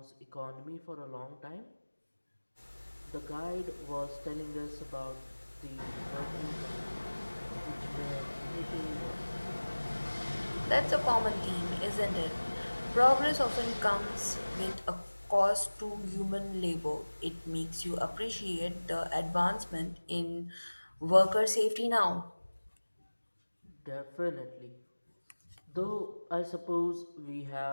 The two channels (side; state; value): both; inverted; correlation -1.00